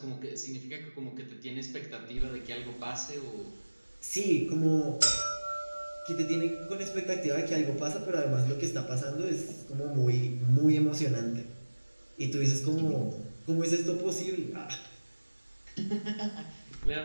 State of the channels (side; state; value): both; inverted; correlation -1.00